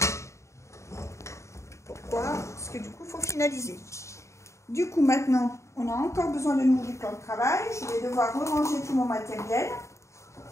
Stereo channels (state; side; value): late; right; 0.14 ms